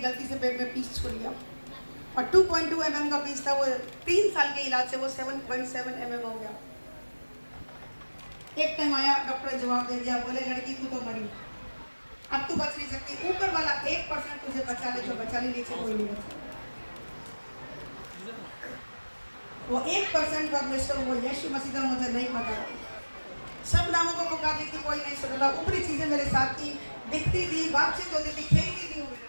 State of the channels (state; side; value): inverted; both; correlation -1.00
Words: गलती से पेट में पीस छूट गया और 2.2 mm का पीस था। वो 3 साल के इलाज से वो 7.7 mm हो गया। एक टाइम आया, डॉक्टर जवाब दे दिया, बोले लड़की तू तो मरी, अब तू बच नहीं सकती। ऊपर वाला 1% तुझे बचा ले, जो बचा ले, नीचे कोई नहीं बचा। वो 1% परमेश्वर, वो यीशु मसीह का मुझे नहीं पता। सब नामों को पुकार ली थी, कोई नहीं सुनता। ऊपरी चीजें मेरे साथ थी, दिखती थी, बातचीत होती थी, खेलती थी।